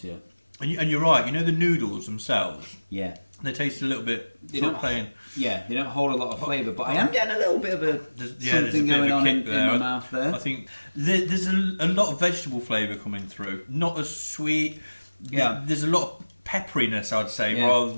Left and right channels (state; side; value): inverted; both; correlation -1.00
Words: And you're right. You know the noodles themselves. Yeah. They taste a little bit. They don't hold a lot of flavour, but I am getting a little bit of something going on in my mouth there. I think there's a lot of vegetable flavour coming through. Not as sweet. Yeah. There's a lot of pepperiness, I'd say, rather